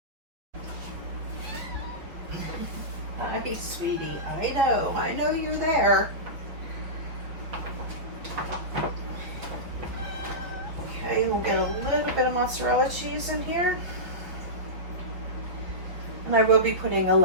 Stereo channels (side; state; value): left; late; 6.2 ms